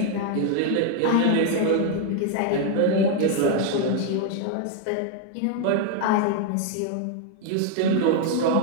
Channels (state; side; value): different; both; correlation 0.00